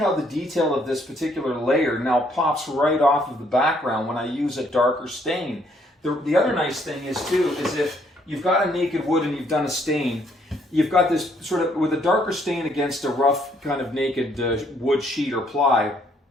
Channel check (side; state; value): both; normal; correlation 0.68